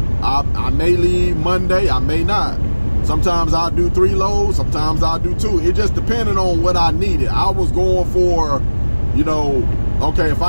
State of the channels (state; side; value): inverted; both; correlation -1.00